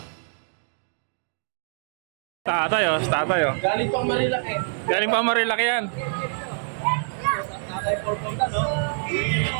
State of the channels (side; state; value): left; silent; digital silence